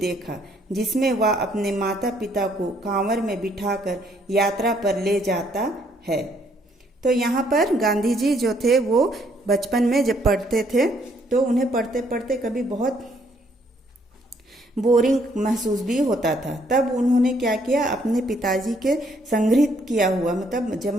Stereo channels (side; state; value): both; normal; correlation 0.68